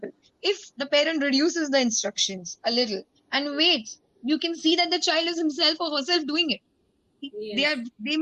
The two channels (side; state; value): both; identical; correlation 1.00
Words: if the parent reduces the instructions a little and waits, you can see that the child is himself or herself doing it. They Yes. are they